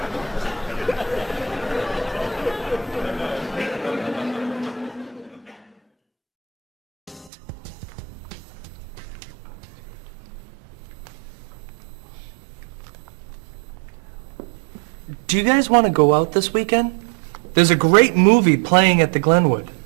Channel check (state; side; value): drops out; left; at 7.3 s